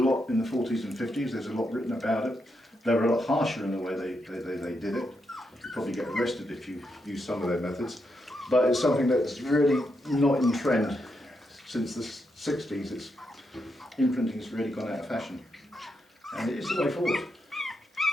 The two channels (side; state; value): both; normal; correlation 0.82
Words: in the 40s and 50s. There's a lot written about it. They were a lot harsher in the way they did it. You'd probably get arrested if you use some of their methods. But it's something that's really not in trend since the 60s. Imprinting has really gone out of fashion. And it is the way forward